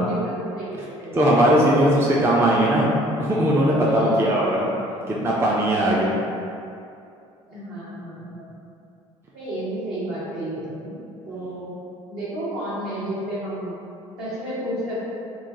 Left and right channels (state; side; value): normal; both; correlation 0.56